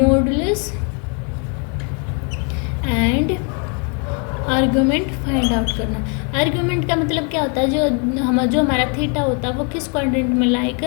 and argument find out करना। आर्गुमेंट का मतलब क्या होता है, जो हमारा थीटा होता है वो किस क्वाड्रेंट में लाई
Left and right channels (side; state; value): right; quieter; 37.4 dB